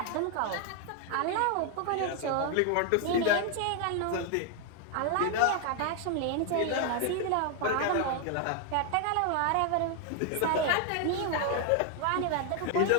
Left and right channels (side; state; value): both; different; correlation 0.00